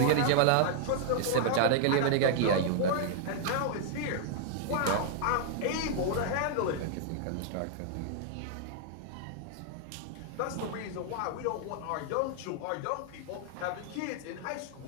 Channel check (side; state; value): both; different; correlation -0.01